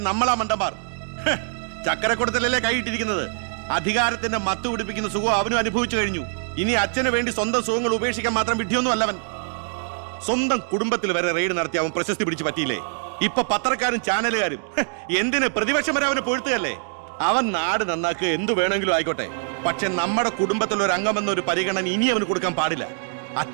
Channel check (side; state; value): left; silent; digital silence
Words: നമ്മളാ മണ്ടന്മാർ. ചക്കരക്കുടത്തിലല്ലേ കൈയിട്ടിരിക്കുന്നത്. അധികാരത്തിന്റെ മത്ത് പിടിപ്പിക്കുന്ന സുഖം അവനും അനുഭവിച്ചു കഴിഞ്ഞു. ഇനി അച്ഛന് വേണ്ടി സ്വന്തം സുഖങ്ങൾ ഉപേക്ഷിക്കാൻ മാത്രം വിഡ്ഢിയൊന്നും അല്ലവൻ. സ്വന്തം കുടുംബത്തിൽ വരെ റെയ്ഡ് നടത്തി അവൻ പ്രശസ്തി പിടിച്ചു പറ്റിയില്ലേ? ഇപ്പൊ പത്രക്കാരും ചാനലുകാരും എന്തിന് പ്രതിപക്ഷം വരെ അവനെ പൊഴുത്തുകയല്ലേ? അവൻ നാട് നന്നാക്കുക എന്തു വേണമെങ്കിലും ആയിക്കോട്ടെ, പക്ഷെ നമ്മുടെ കുടുംബത്തിൽ ഒരു അംഗമെന്നൊരു പരിഗണന ഇനി അവന് കൊടുക്കാൻ പാടില്ല.